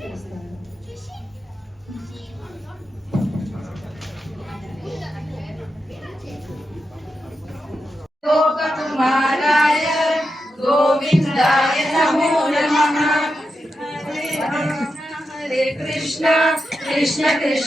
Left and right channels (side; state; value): both; normal; correlation 0.88